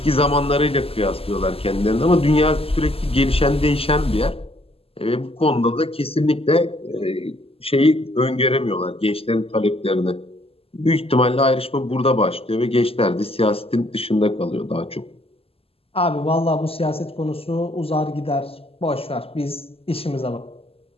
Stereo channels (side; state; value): right; late; 0.28 ms